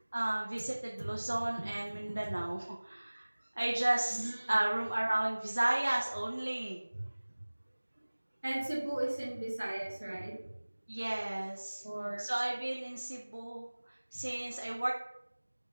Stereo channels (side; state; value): both; inverted; correlation -1.00